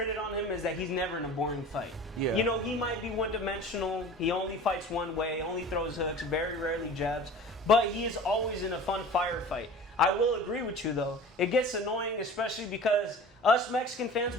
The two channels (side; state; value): both; normal; correlation 0.40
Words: on him is that he's never in a boring fight. Yeah. You know, he might be one-dimensional. He only fights one way, only throws hooks, very rarely jabs, but he is always in a fun firefight. I will agree with you, though. It gets annoying, especially because us Mexican fans,